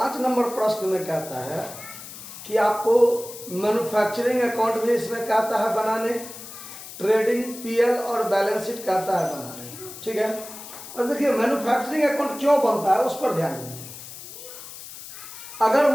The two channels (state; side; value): noise; left; hiss, 13 dB below the sound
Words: नंबर प्रश्न में कहता है कि आपको मैन्युफैक्चरिंग अकाउंट भी इसमें कहता है बनाने, ट्रेडिंग पीएल और बैलेंस शीट कहता है बनाने। ठीक है, और देखिए मैन्युफैक्चरिंग अकाउंट क्यों बनता है उस पर ध्यान दीजिए। अगर